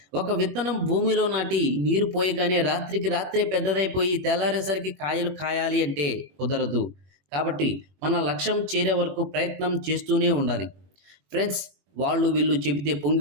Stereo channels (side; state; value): left; late; 21 ms